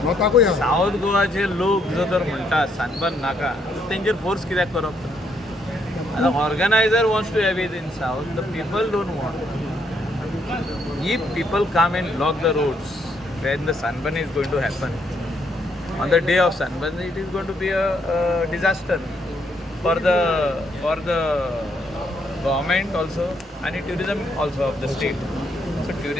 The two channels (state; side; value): normal; both; correlation 0.73